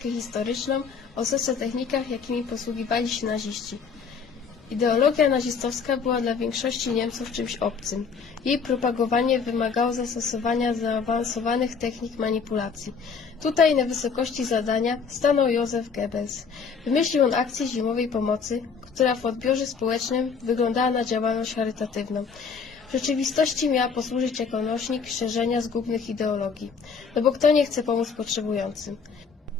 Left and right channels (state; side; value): quieter; right; 5.7 dB